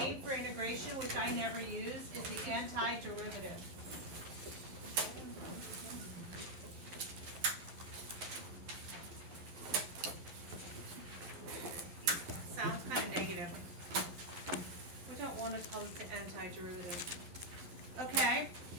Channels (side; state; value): left; late; 11 ms